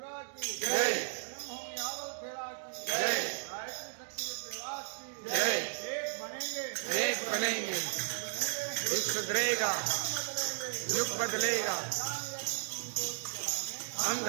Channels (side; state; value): left; silent; digital silence